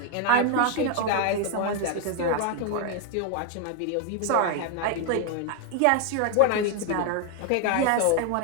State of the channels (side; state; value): both; different; correlation 0.01